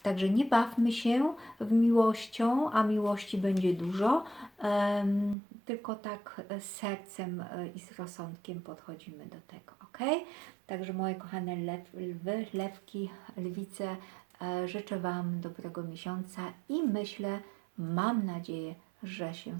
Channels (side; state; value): left; drops out; at 5.4 s